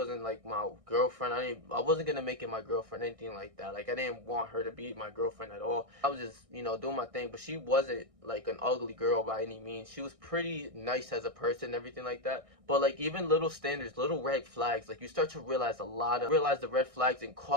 like my girlfriend. I wasn't gonna make it my girlfriend, anything like that. Like I didn't want her to be my girlfriend at all. I was just, doing my thing, but she wasn't like an ugly girl by any means. She was pretty nice as a person, everything like that. But like even little standards, little red flags, like you start to realize the red flags and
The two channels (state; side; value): late; left; 1.6 ms